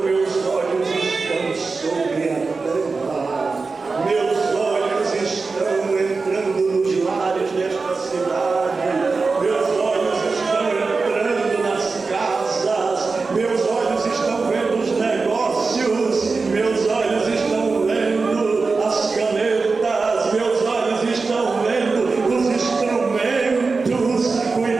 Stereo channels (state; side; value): quieter; left; 4.2 dB